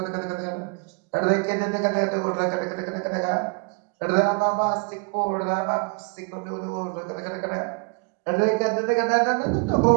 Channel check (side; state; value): left; quieter; 34.1 dB